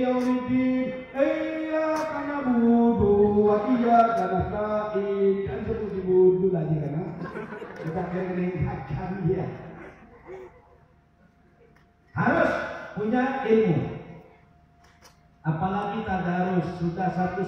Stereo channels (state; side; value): identical; both; correlation 1.00